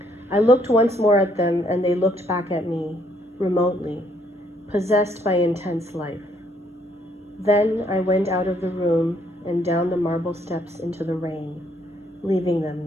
I looked once more at them, and they looked back at me, remotely, possessed by intense life. Then I went out of the room and down the marble steps into the rain, leaving them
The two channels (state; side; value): normal; both; correlation 0.68